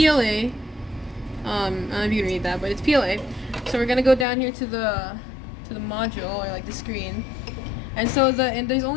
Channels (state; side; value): drops out; right; at 4.2 s